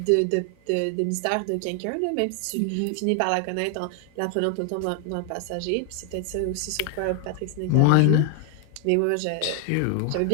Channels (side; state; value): both; different; correlation 0.00